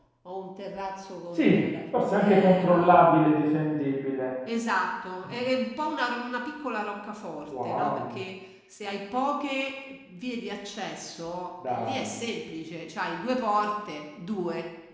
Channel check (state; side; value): identical; both; correlation 1.00